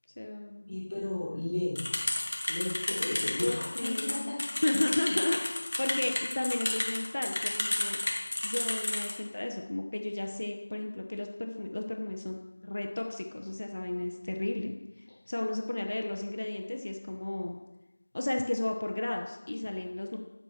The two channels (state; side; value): inverted; both; correlation -1.00